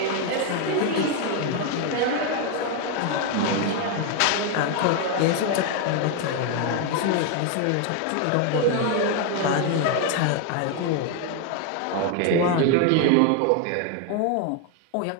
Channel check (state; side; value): different; both; correlation 0.01